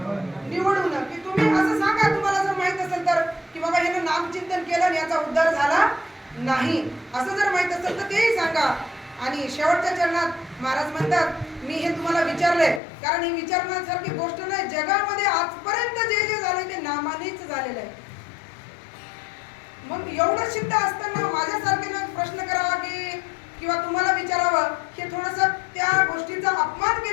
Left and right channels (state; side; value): drops out; right; at 12.8 s